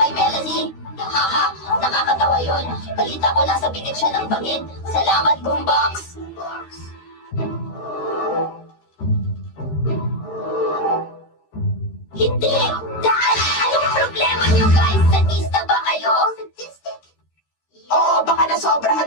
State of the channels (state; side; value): late; right; 13 ms